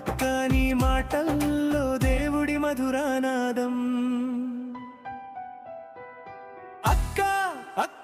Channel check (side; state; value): both; identical; correlation 1.00